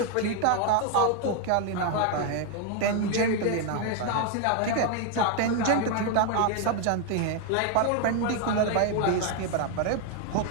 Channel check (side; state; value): both; different; correlation 0.01